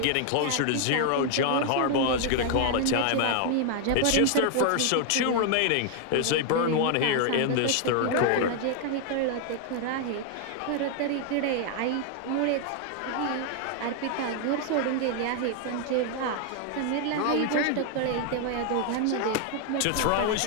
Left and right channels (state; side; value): different; both; correlation 0.00